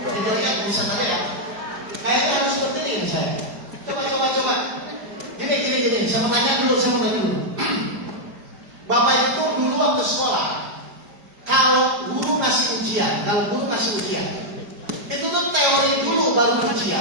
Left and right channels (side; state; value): left; late; 5.0 ms